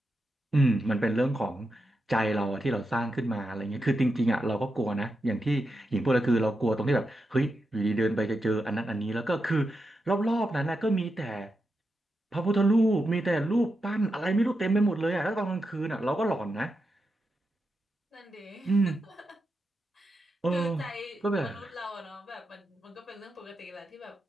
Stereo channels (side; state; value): both; normal; correlation 0.87